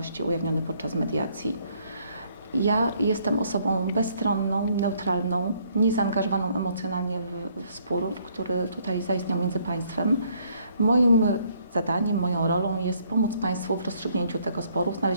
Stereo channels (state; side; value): inverted; both; correlation -0.66